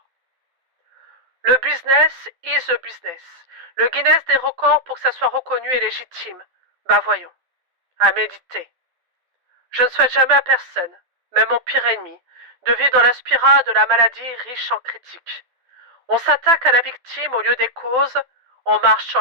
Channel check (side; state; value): left; late; 12 ms